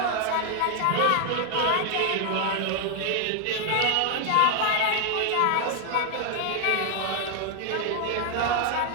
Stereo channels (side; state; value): both; different; correlation 0.00